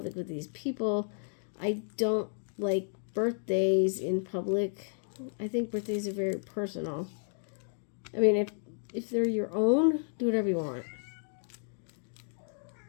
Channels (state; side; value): silent; right; digital silence